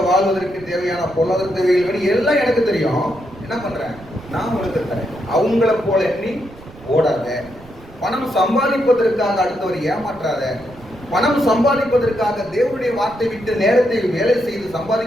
வாழ்வதற்கு தேவையான பொருளாதார தேவைகள் வேணும். எல்லாம் எனக்கு தெரியும். என்ன பண்றேன்? நான் உங்களுக்கு தரேன். அவங்கள போல எண்ணி ஓடாத. பணம் சம்பாதிப்பதற்காக அடுத்தவர் ஏமாற்றாத. பணம் சம்பாதிப்பதற்காக தேவனுடைய வார்த்தை விட்டு நேரத்தை வேலை செய்து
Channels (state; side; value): noise; right; rumble, 21 dB below the sound